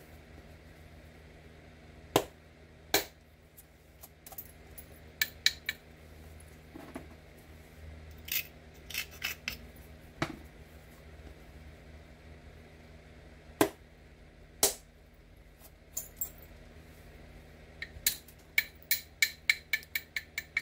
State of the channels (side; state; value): both; identical; correlation 1.00